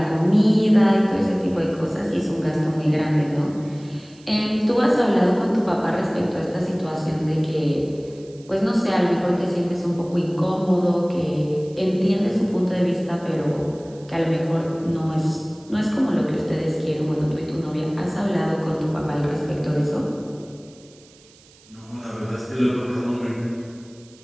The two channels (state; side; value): noise; right; hiss, 27 dB below the sound